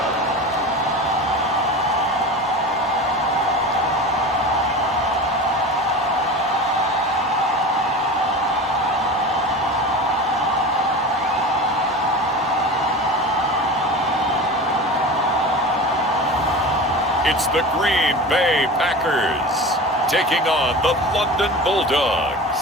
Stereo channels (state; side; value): normal; both; correlation 0.32